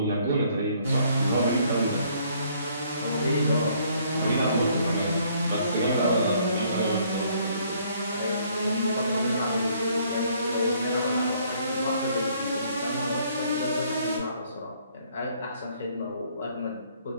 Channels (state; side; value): inverted; both; correlation -0.64